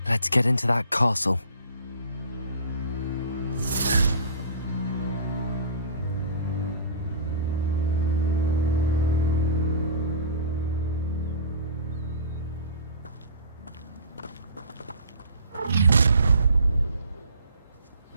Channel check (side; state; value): both; inverted; correlation -0.43